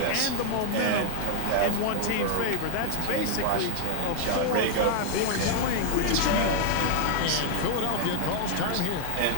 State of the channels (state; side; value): different; both; correlation 0.00